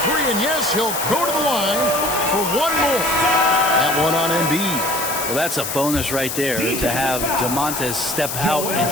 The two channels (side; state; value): left; noise; hiss, 5 dB below the sound